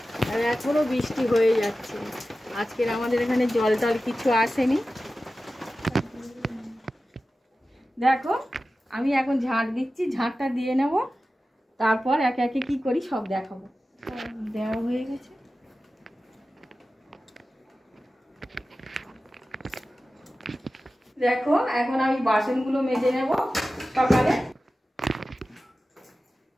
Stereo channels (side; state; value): both; normal; correlation 0.95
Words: আর এখনো বৃষ্টি হয়ে যাচ্ছে। আজকের আমাদের এখানে জল টল কিছু আসেনি। দেখো আমি এখন ঝাঁট দিচ্ছি, ঝাঁটটা দিয়ে নেব, তারপর একে একে কি করি সব দেখাবো। দেওয়া হয়ে গেছে। দেখো এখন আমি বাসনগুলো মেজে নেব সকালে।